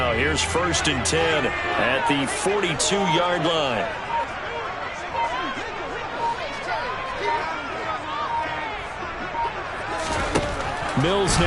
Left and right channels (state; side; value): identical; both; correlation 1.00